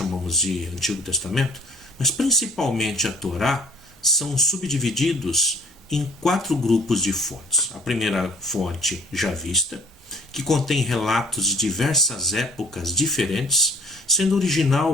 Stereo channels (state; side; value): normal; both; correlation 0.55